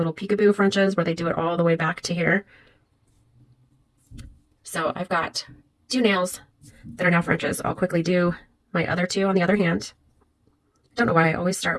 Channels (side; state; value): both; identical; correlation 1.00